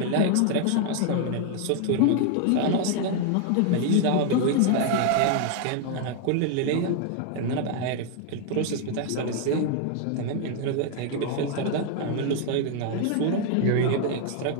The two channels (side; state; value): both; different; correlation 0.00